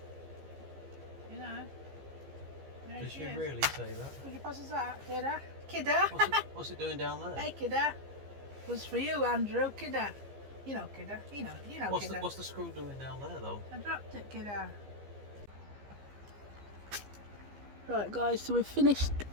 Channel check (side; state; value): left; late; 15 ms